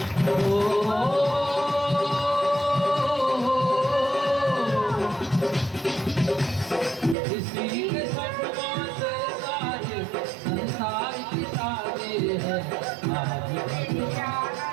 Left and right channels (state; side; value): drops out; left; at 7.2 s